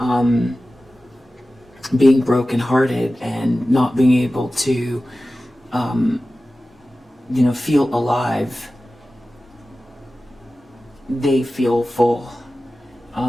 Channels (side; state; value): both; normal; correlation 0.95